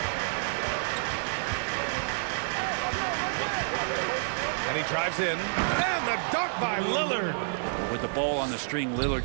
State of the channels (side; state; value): left; silent; digital silence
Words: And he drives in. And the dunk by Lillard. With the ball on the string,